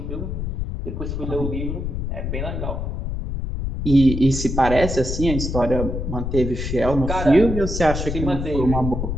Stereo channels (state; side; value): noise; left; rumble, 3 dB below the sound